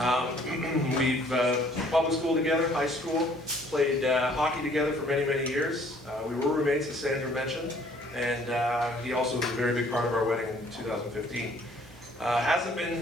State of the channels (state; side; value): normal; both; correlation 0.59